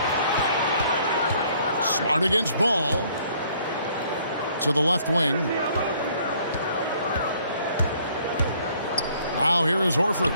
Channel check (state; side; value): inverted; both; correlation -0.61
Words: Smart against Ball. To the left wing. Now here is Horford.